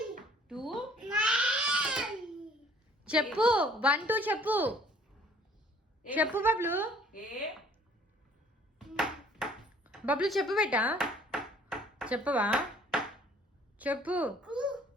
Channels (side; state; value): both; normal; correlation 0.55